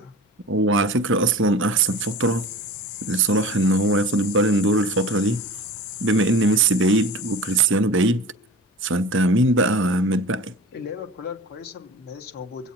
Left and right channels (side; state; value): both; normal; correlation 0.37